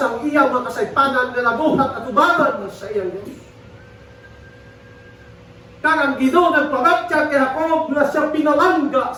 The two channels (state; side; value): identical; both; correlation 1.00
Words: iyang mga kasaypanan na nabuhat at ubangan sa iyang Diyos. Kaya ang Ginoo nagpabatyak kay Jacob na siya pinalangga